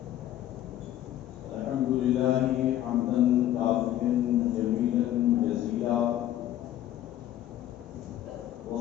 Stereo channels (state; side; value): quieter; right; 12.6 dB